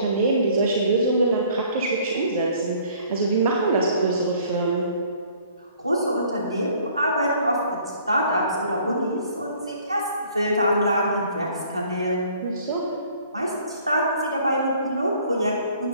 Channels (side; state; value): both; inverted; correlation -0.57